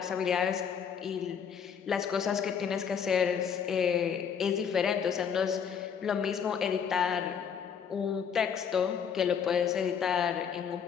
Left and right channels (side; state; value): right; quieter; 7.3 dB